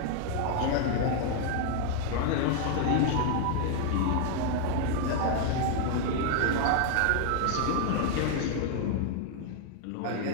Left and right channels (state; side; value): different; both; correlation 0.00